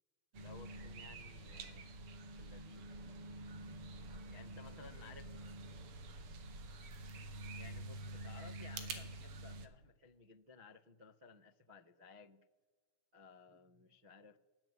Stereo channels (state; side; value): late; left; 6.6 ms